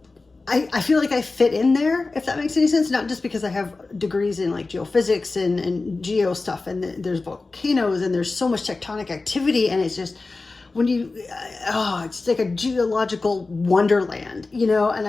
feel like I fit in there, if that makes any sense. Not just because I have degrees in like geophysics and geo stuff, and there's volcanoes and there's so much tectonic activity, and it's just, when you, it's like a geological wonderland, you know, and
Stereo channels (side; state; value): right; quieter; 3.6 dB